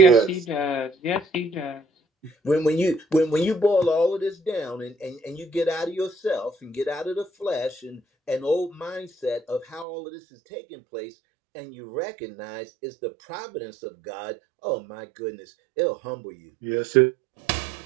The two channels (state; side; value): drops out; left; at 9.9 s